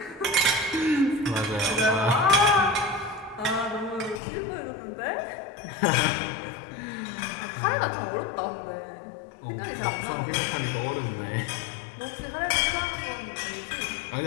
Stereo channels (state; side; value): drops out; right; at 4.2 s